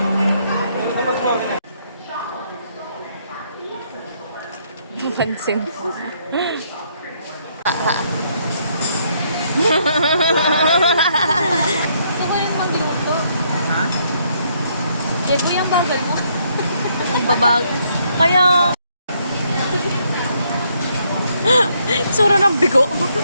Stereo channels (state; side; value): inverted; both; correlation -0.71